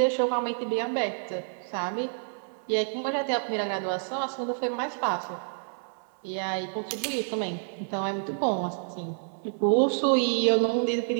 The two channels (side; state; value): left; silent; 59 dB below the other